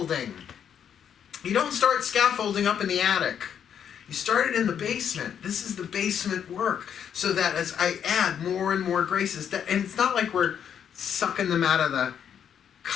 You don't start scaffolding up in the attic. You start it in the basement. This is the basement work. So that as I add more and more graces, and it's not like we're sucking them out of the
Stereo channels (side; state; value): right; quieter; 8.5 dB